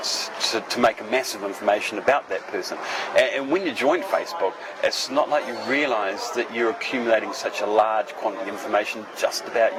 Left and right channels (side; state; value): both; identical; correlation 1.00